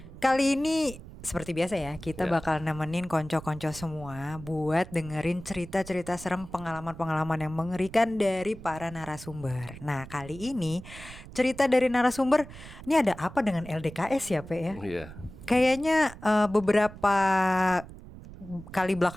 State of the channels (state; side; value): noise; right; rumble, 15 dB below the sound